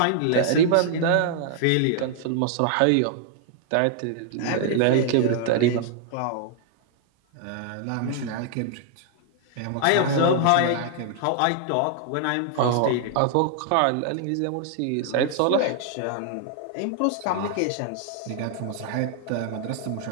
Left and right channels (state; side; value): different; both; correlation -0.01